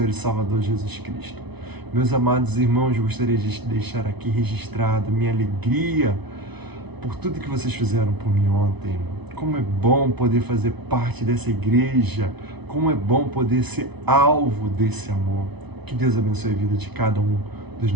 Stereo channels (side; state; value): left; late; 0.99 ms